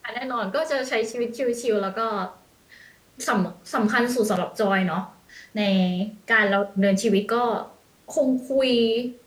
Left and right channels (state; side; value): identical; both; correlation 1.00